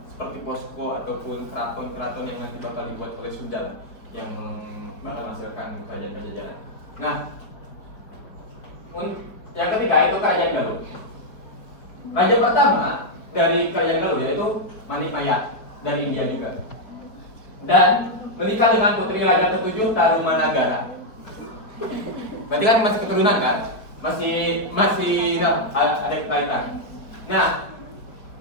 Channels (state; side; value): late; right; 4.8 ms